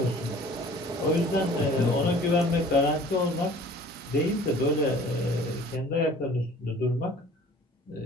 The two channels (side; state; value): both; normal; correlation 0.49